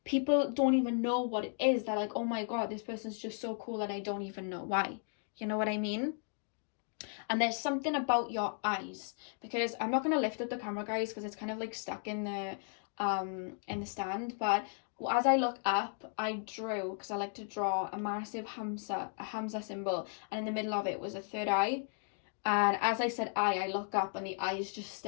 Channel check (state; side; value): silent; right; 54 dB below the other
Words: People don't even know what it is. They're like, oh my God, this person's just so cool and I don't even know why. You know what I mean? And there's something about your eyes, because I'm not going to lift up the camera, guys, because it's kind of like stuck in the stand. But as I look up, I drew, because I like to draw, a massive Hamza symbol, and in the middle of it was a third eye. And as I said I look up and the eye is just